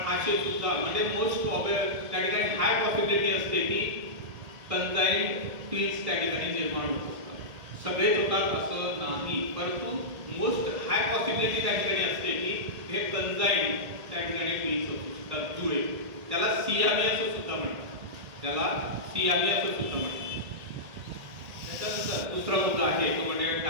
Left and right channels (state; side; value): late; left; 1.8 ms